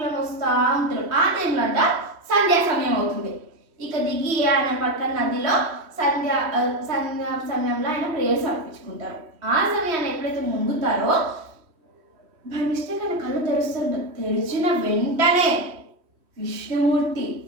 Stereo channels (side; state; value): left; late; 3.1 ms